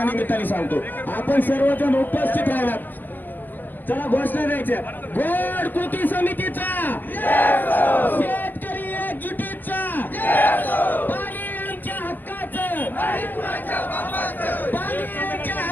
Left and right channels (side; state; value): right; late; 0.088 ms